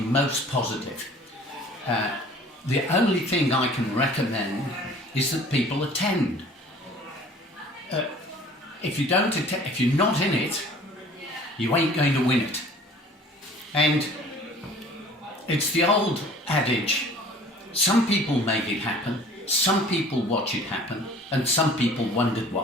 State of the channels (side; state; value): both; normal; correlation 0.49